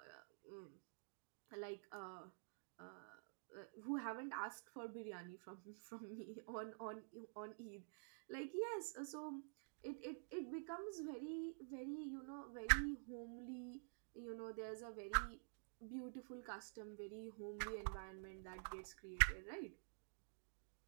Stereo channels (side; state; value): left; silent; digital silence